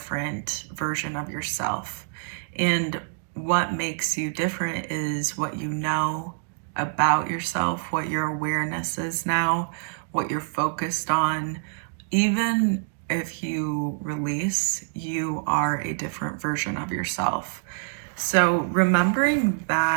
version of yourself. And what makes you different is what you know about yourself, what your awareness is now, what you're focused on. Even if you release, you are a different version of yourself. So remembering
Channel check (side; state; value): left; silent; digital silence